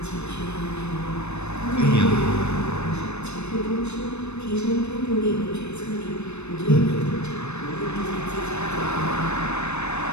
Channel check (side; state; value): right; late; 0.81 ms